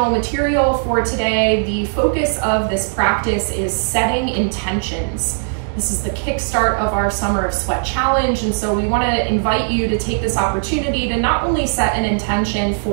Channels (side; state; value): left; silent; digital silence